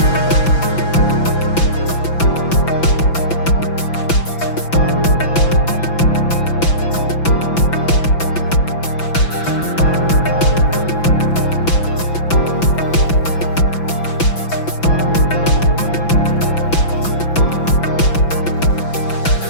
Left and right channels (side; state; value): right; late; 6.0 ms